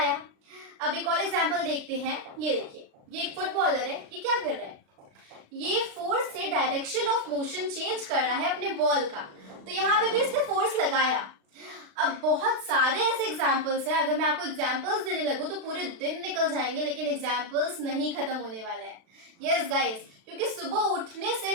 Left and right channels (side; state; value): left; late; 36 ms